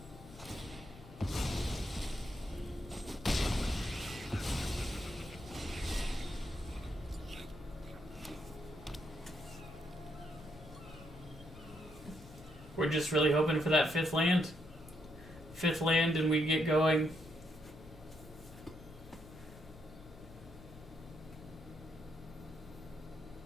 We're just really hoping for that 5th land. 5th land and we get going.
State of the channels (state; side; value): normal; both; correlation 0.78